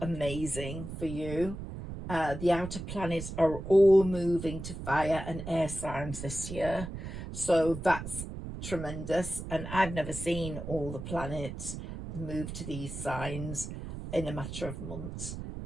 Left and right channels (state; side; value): noise; right; rumble, 8 dB below the sound